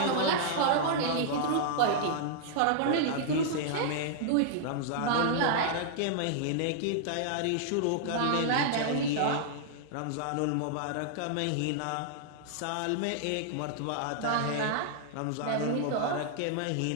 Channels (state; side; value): different; both; correlation -0.01